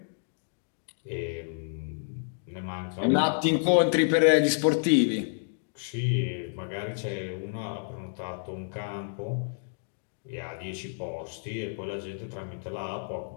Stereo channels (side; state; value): right; silent; digital silence